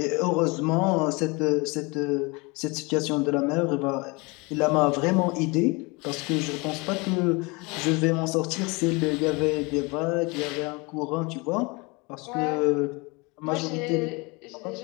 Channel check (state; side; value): quieter; right; 27.3 dB